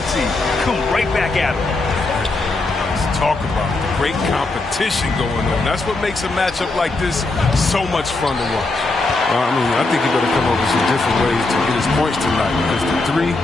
Come right back at him. Let's talk about great competition going on. That's what makes a matchup like this so much fun to watch. I think he better come up with some different ways to get his points tonight, because the three,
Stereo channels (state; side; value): quieter; right; 3.2 dB